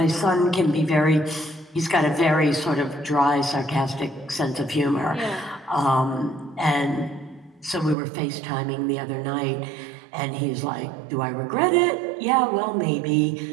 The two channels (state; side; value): drops out; left; at 8.0 s